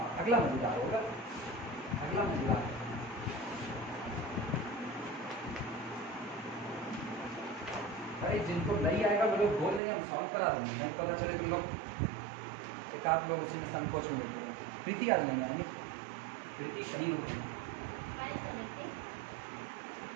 अगला मजेदार होगा, अगला मजेदार। अरे जिनको नहीं आएगा वो लोग बोल देंगे, हम सॉल्व करा देंगे। नहीं पता चले तुम लोग एक आध लोग उसी में संकोच में बैठे। प्रीति आज नहीं आएगी, प्रीति कहीं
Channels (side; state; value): left; drops out; at 9.8 s